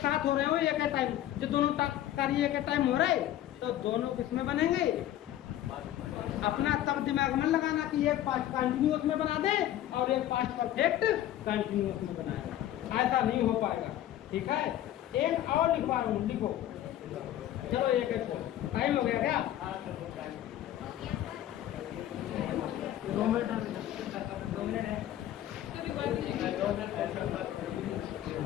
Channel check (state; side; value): quieter; right; 12.6 dB